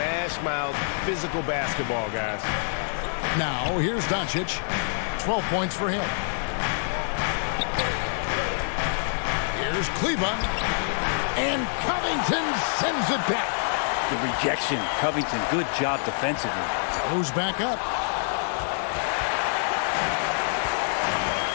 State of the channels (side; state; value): right; silent; digital silence